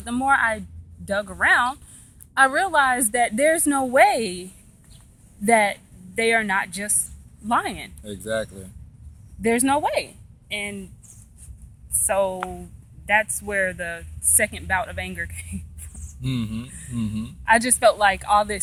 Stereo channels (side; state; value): both; identical; correlation 1.00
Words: the more I dug around, I realized that there's no way that they are not just lying. Exactly. There's no way. And so that's where the second bout of anger came from. Mm-hmm. Mm-hmm. I just felt like all